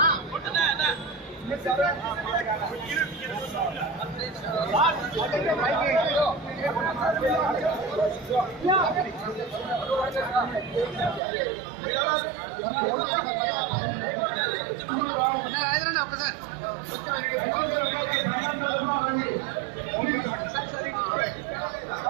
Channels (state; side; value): drops out; left; at 11.2 s